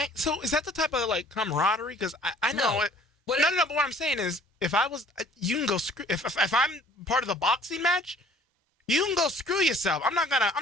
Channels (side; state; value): both; normal; correlation 0.54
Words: So is that the type of like camaraderie? Because I know it. No. But what I'm saying is, if I was, you can go screw. If I'm part of the boxing match, you can go screw yourself. I'm not